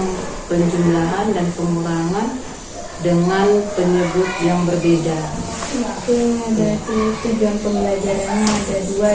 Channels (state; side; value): identical; both; correlation 1.00